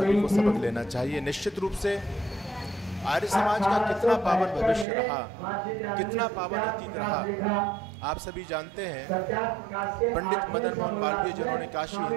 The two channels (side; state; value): left; drops out; at 4.9 s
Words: को सबक लेना चाहिए। निश्चित रूप से आर्य समाज का कितना पावन भविष्य रहा, कितना पावन अतीत रहा, आप सभी जानते हैं। पंडित मदन मोहन मालवीय जिन्होंने काशी